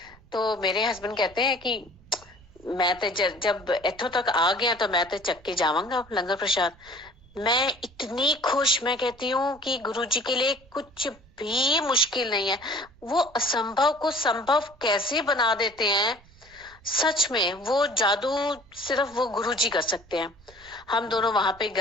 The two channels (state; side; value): noise; right; rumble, 26 dB below the sound